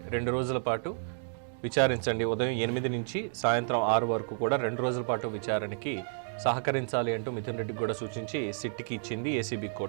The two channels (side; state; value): left; silent; digital silence